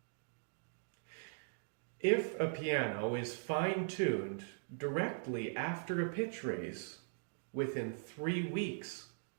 If a piano is fine-tuned directly after a pitch raise, within 3 weeks,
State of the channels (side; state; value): left; silent; digital silence